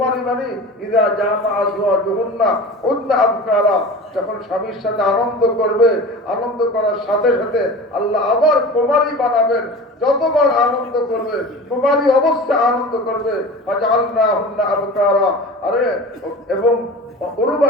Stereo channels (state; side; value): normal; both; correlation 0.35